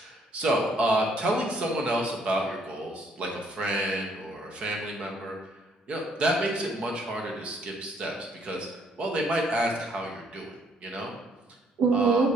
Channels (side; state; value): both; normal; correlation 0.67